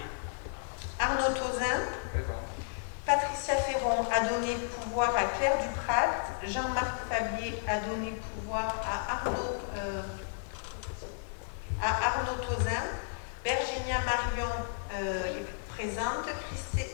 Arnaud Tauzin, Patricia Ferron a donné pouvoir à Claire Duprat, Jean-Marc Fabier a donné pouvoir à Arnaud Tauzin, Virginia Marion est présente,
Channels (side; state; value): right; silent; 56 dB below the other